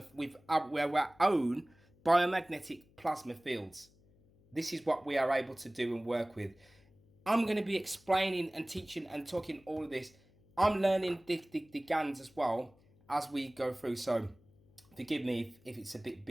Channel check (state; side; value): noise; left; hum, 30 dB below the sound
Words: with our own biomagnetic plasma fields. This is what we are able to do and work with. I'm going to be explaining and teaching and talking all of this. I'm learning the GANs as well as we go through, so forgive me if it's a bit